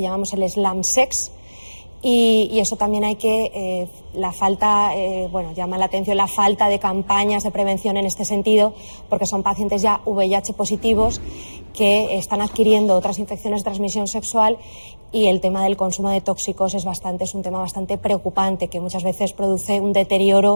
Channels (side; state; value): both; inverted; correlation -1.00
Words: llamamos el slam sex, Y eso también hay que, llama la atención la falta de campañas de prevención en este sentido, porque son pacientes ya VIH positivos que están adquiriendo otras infecciones de transmisión sexual, y el tema del consumo de tóxicos es un tema bastante preocupante, que muchas veces produce un